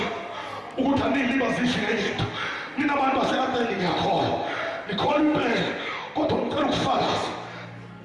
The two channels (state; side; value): identical; both; correlation 1.00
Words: ukuthi anilibazisi ngenye into, nina abantu base-Atheni ngiyakhola nikhola impela, kodwa ngicela ukufakaza